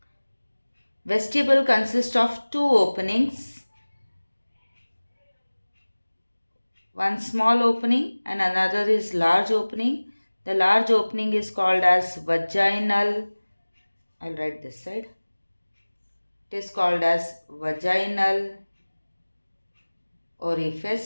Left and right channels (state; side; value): inverted; both; correlation -1.00